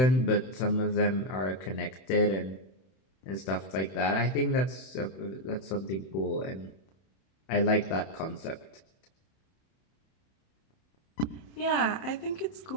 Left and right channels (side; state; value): right; late; 31 ms